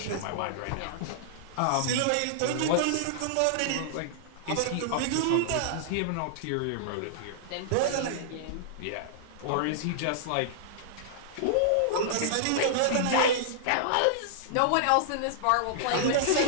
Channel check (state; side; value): different; both; correlation -0.01